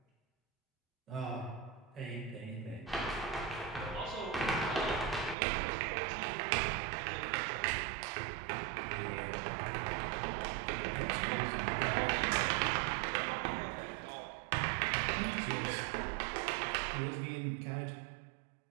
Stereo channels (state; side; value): drops out; left; at 5.4 s